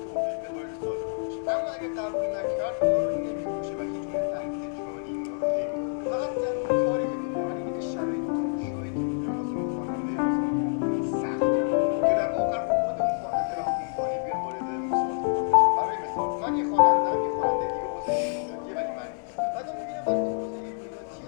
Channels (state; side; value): silent; right; digital silence